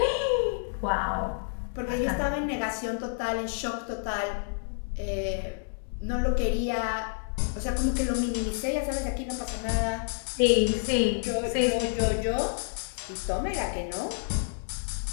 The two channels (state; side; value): silent; right; digital silence